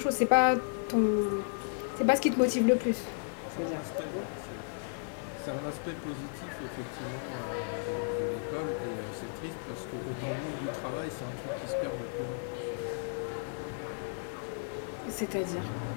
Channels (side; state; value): right; silent; digital silence